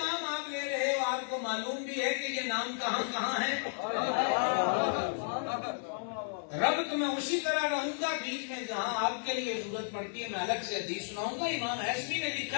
آپ لے رہے ہو آپ کو معلوم بھی ہے کہ یہ نام کہاں کہاں ہے؟ رب تو میں اسی طرح رہوں گا، بیچ میں جہاں آپ کے لیے ضرورت پڑتی ہے میں الگ سے حدیث سناؤں گا۔ امام حسبی نے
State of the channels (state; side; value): silent; right; 56 dB below the other